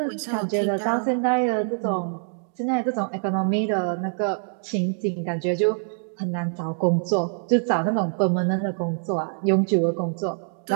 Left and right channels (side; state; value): left; silent; 62 dB below the other